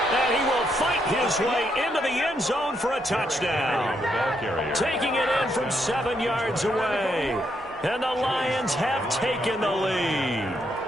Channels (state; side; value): normal; both; correlation 0.77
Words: And he will fight his way into the end zone for a touchdown. Taking it in from 7 yards away. And the Lions have taken the lead.